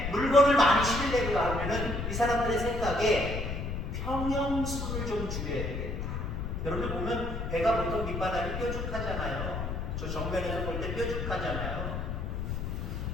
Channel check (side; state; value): left; noise; rumble, 3 dB below the sound